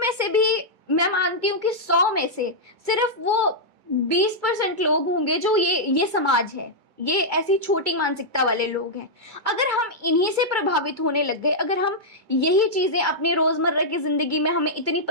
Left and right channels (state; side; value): late; left; 2.3 ms